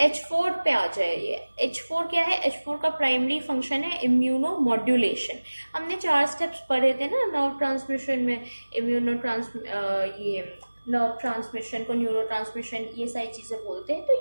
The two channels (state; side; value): inverted; both; correlation -1.00